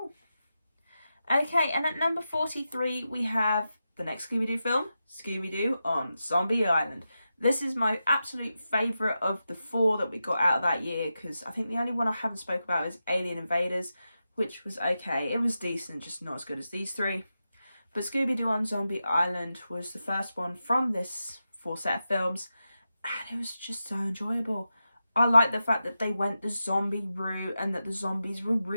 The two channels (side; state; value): both; inverted; correlation -0.90